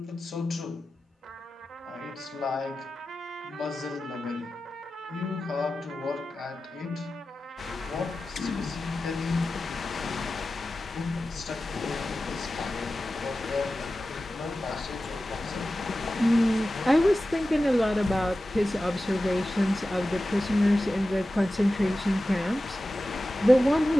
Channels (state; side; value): normal; both; correlation 0.94